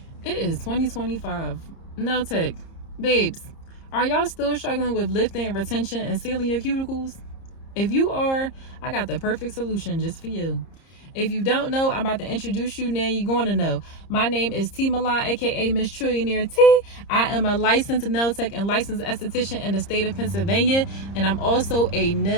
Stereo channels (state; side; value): late; right; 30 ms